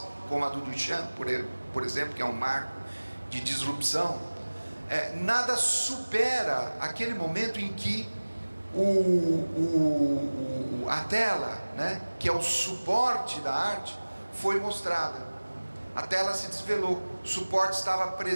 como a do Duchamp, por exemplo, que é um marco de disrupção, nada supera aquele momento em que a tela, né, que é o suporte da arte, foi mostrada. A tela se desvelou, o suporte estava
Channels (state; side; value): inverted; both; correlation -1.00